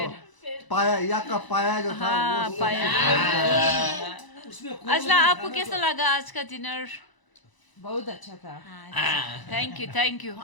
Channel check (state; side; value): late; right; 1.0 ms